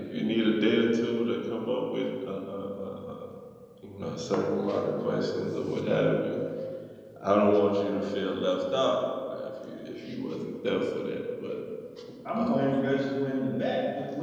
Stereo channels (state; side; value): identical; both; correlation 1.00